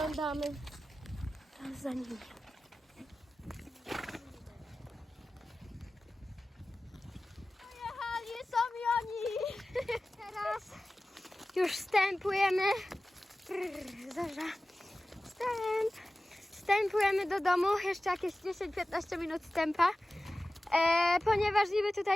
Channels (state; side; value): normal; both; correlation 0.96